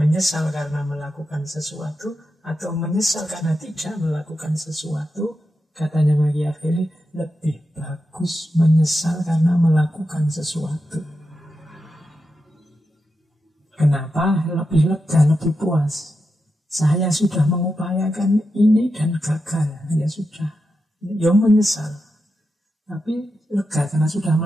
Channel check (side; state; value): both; normal; correlation 0.88